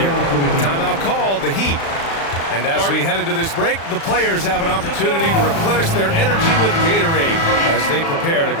Timeout called, the Heat. And as we head into this break, the players have an opportunity to replenish their energy with Gatorade as they prepare to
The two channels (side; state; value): right; late; 36 ms